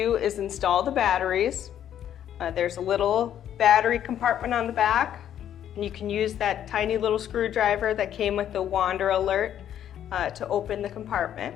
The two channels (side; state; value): right; quieter; 10.3 dB